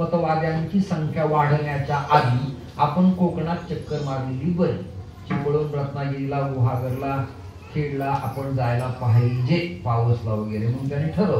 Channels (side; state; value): both; identical; correlation 1.00